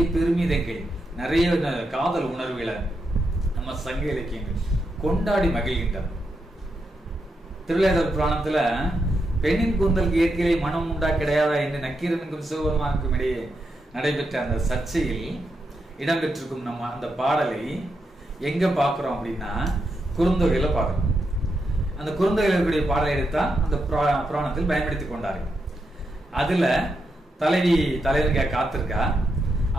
பெருமிதங்கள், நிறைய காதல் உணர்வுகளை நம்ம சங்க இலக்கியங்கள் கொண்டாடி மகிழ்கின்றன. திருவிளையாடல் புராணத்துல பெண்ணின் கூந்தலுக்கு இயற்கையிலே மனம் உண்டா கிடையாதா என்று நக்கீரனுக்கும் சிவபெருமானுக்கும் இடையே நடைபெற்ற அந்த சர்ச்சையில் இடம்பெற்றிருக்கும் நம்ம அந்த பாடலை எங்க பாக்குறோம் அப்படின்னா குறுந்தொகையில பாக்குறோம். அந்த குறுந்தொகையில் இருக்கக்கூடிய பாடலை எடுத்தான் அந்த புராணத்தில் பயன்படுத்தி கொண்டார்கள். அதுல தலைவி தலைவனுக்காக காத்திருக்கா,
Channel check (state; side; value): normal; both; correlation 0.84